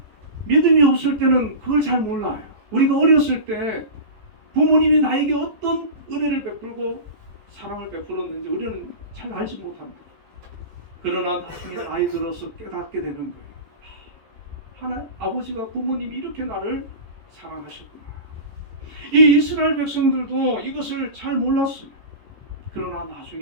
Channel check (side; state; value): left; late; 14 ms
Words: 믿음이 없을 때는 그걸 잘 몰라요. 우리가 어렸을 때 부모님이 나에게 어떤 은혜를 베풀고 사랑을 베풀었는지 우리는 잘 알지 못합니다. 그러나 나중에 나이 들어서 깨닫게 되는 거예요. 아버지가 부모님이 이렇게 나를 사랑하셨구나. 이 이스라엘 백성들도 이것을 잘 몰랐어요. 그러나